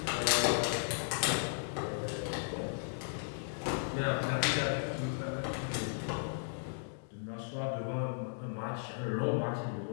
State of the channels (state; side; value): silent; right; digital silence